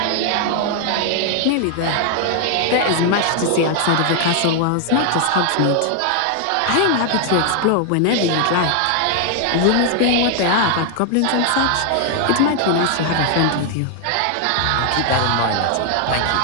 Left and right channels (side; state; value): both; different; correlation 0.00